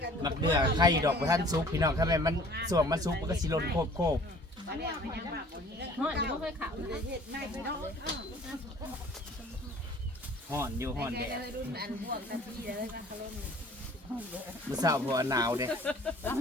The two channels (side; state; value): both; normal; correlation 0.51